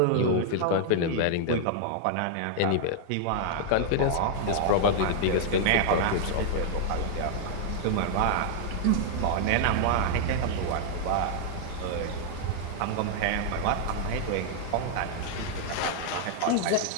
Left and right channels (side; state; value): both; different; correlation -0.01